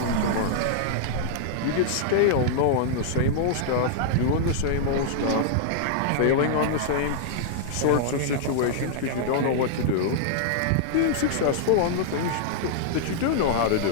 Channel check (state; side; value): different; both; correlation -0.01